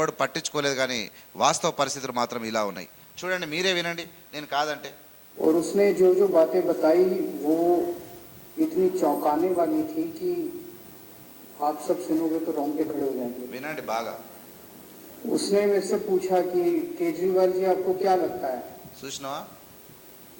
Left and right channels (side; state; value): both; identical; correlation 1.00